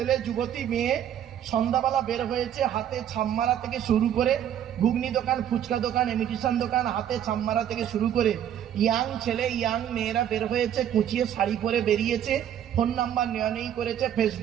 যুবতী মেয়ে সন্ধ্যাবেলা বের হয়েছে, হাতে ছামমারা থেকে শুরু করে ঘুগনি দোকান, ফুচকা দোকান, ইমিটেশন দোকান, হাতে ছামমারা থেকে শুরু করে ইয়াং ছেলে ইয়াং মেয়েরা বের হয়েছে, কুচিয়ে শাড়ি পরে বেরিয়েছে, ফোন নাম্বার নেই করেছে,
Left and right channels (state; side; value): quieter; left; 10.1 dB